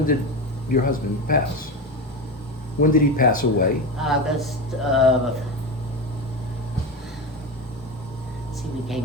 did your husband pass? When did he pass away? August see, we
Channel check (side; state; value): both; normal; correlation 0.21